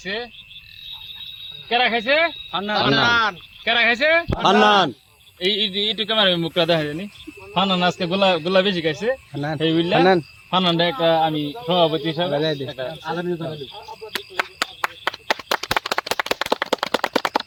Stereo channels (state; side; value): identical; both; correlation 1.00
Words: কেরা খাইছে? কেরা খাইছে? এইটু ক্যামেরা মুখটা দেখা জানি। ফানান আজকে গুল্লা বেশি খাইছে, এই বুঝলা ফানানটা একটা আমি সভাপতি হিসাবে